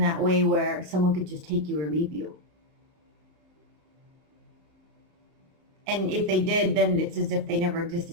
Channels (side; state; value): left; late; 32 ms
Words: way where someone could just take you or leave you. And if they did, then it's as if they never